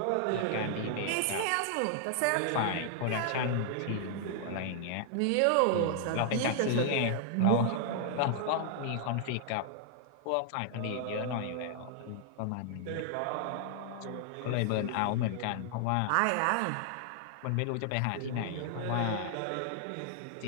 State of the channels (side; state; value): both; different; correlation 0.00